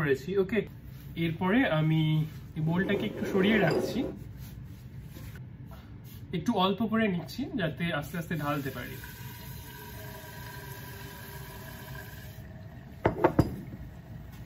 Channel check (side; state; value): both; identical; correlation 1.00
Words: ওকে, এরপরে আমি এই বোলটাকে একটু সরিয়ে রাখছি, একটু অল্প করে নিচ্ছি যাতে আস্তে আস্তে ঢালতে পারি।